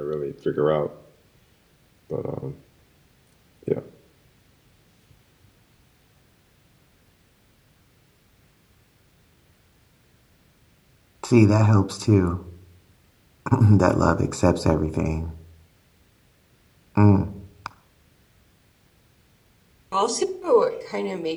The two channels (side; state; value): both; identical; correlation 1.00